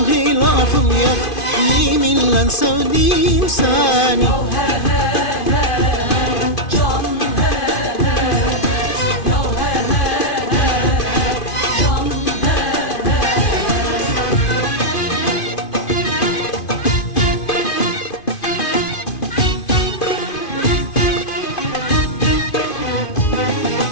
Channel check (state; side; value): late; right; 2.5 ms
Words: hilafım yok, yeminle sevdim seni.